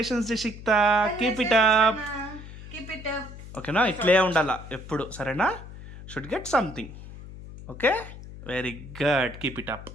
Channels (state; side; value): noise; left; hum, 14 dB below the sound